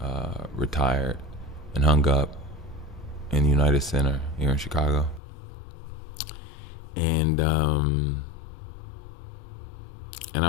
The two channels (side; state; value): right; drops out; at 5.2 s